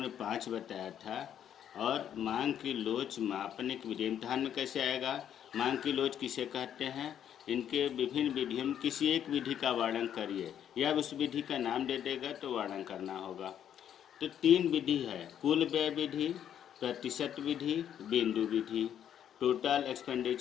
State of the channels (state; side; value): quieter; right; 9.7 dB